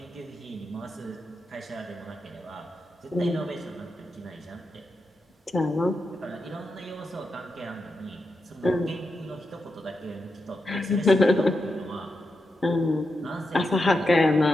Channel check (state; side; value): normal; both; correlation 0.87